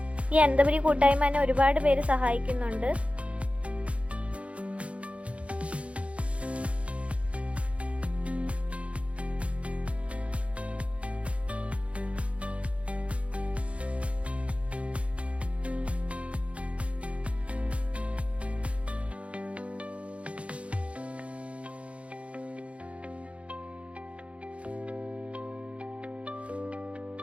ഈ അനന്തപുരി കൂട്ടായ്മ തന്നെ ഒരുപാട് പേര് സഹായിക്കുന്നുണ്ട്.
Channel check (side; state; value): left; late; 0.062 ms